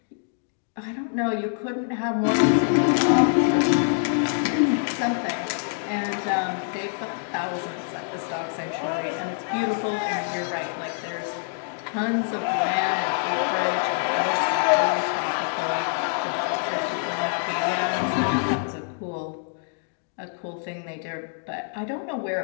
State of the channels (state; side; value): silent; right; 61 dB below the other